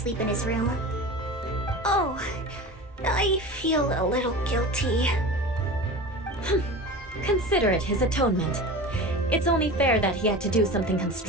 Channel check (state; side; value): normal; both; correlation 0.33